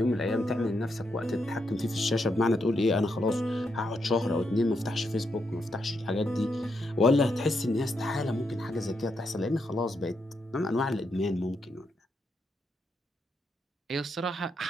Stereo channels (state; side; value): normal; both; correlation 0.81